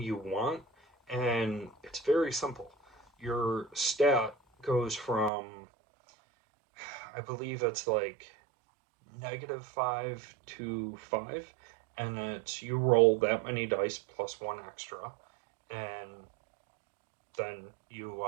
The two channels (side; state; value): left; drops out; at 5.3 s